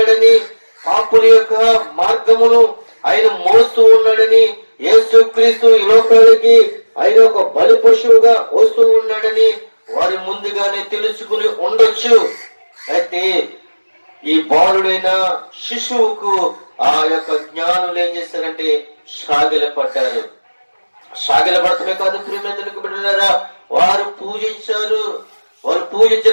పాపుల యొక్క మార్గమును ఆయన మోస్తూ ఉన్నాడని, యేసుక్రీస్తు ఈ లోకానికి ఆయన ఒక బలి పశువుగా వస్తూ ఉన్నాడని వారు ముందుగానే తెలుసుకుని ఉండొచ్చు. అయితే ఈ బాలుడైన శిశువుకు ఆ యొక్క జ్ఞానులు ఏం చేశారంటే సాగిలపడ్డారు. సాగిలపడటమే కాదు ప్రియమైనకు బిడ్డలారా, వారు పూజించారు. వారు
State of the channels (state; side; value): inverted; both; correlation -1.00